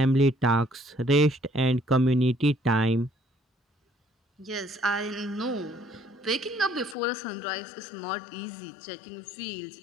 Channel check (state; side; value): drops out; right; at 7.0 s